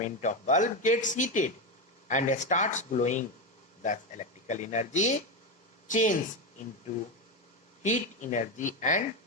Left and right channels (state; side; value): normal; both; correlation 0.13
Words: of bulb gets heated and starts glowing. Thus electrical energy changes into heat energy and